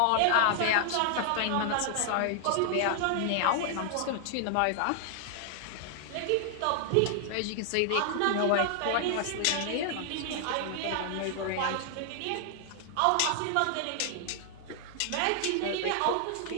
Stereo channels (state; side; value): different; both; correlation 0.00